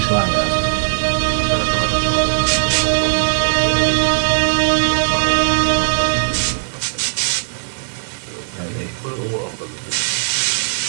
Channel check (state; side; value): silent; left; 66 dB below the other